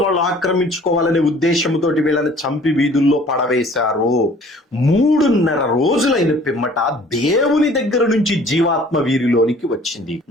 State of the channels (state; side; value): normal; both; correlation 0.52